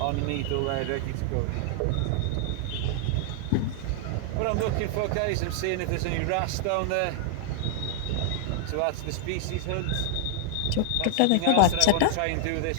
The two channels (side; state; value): both; different; correlation -0.01